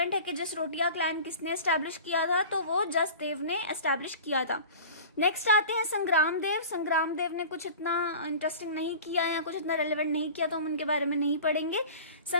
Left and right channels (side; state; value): both; inverted; correlation -0.38